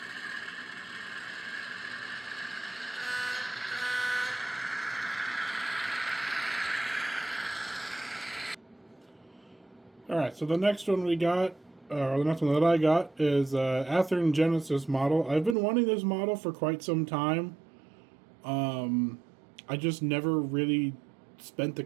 All right. So the next one we got, or the next one that I got, is Athearn Genesis model. I've been wanting this model for quite some time. I just never really spent the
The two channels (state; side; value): drops out; left; at 15.6 s